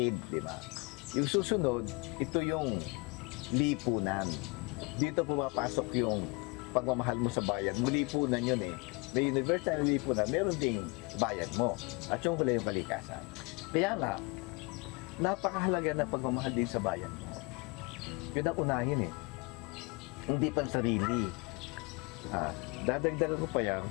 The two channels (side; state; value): right; quieter; 29.2 dB